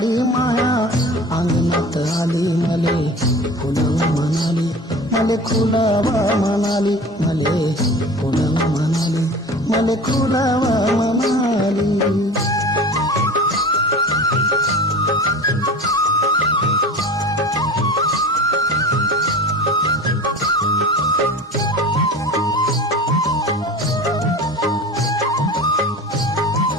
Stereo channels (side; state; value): both; normal; correlation 0.37